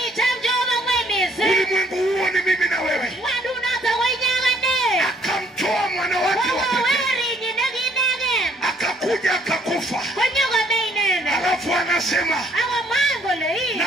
Ulimwengu huo ni mimi na wewe. Akamtoa mwana wake wa pekee, akakuja akakufa. Alafu anasema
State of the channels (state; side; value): normal; both; correlation 0.64